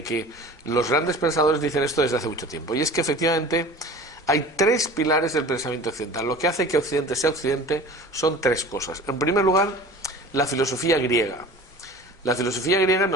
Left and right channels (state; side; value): normal; both; correlation 0.40